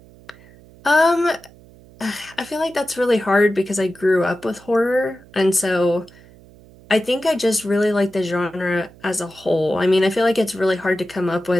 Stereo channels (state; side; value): noise; right; hum, 24 dB below the sound